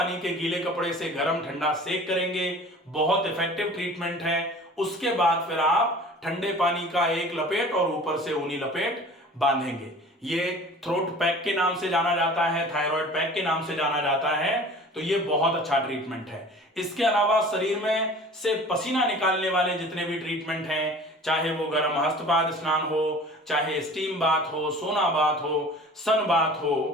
के गीले कपड़े से गर्म ठंडा सेक करेंगे, बहुत इफेक्टिव ट्रीटमेंट है। उसके बाद फिर आप ठंडे पानी का एक लपेट और ऊपर से ऊनी लपेट बांधेंगे। ये थ्रोट पैक के नाम से जाना जाता है, थायराइड पैक के नाम से जाना जाता है। तो ये बहुत अच्छा ट्रीटमेंट है। इसके अलावा शरीर में से पसीना निकालने वाले जितने भी ट्रीटमेंट हैं, चाहे वो गर्म हस्तपाद स्नान हो, चाहे स्टीम बाथ हो, सोना बाथ हो, सन बाथ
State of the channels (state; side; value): normal; both; correlation 0.43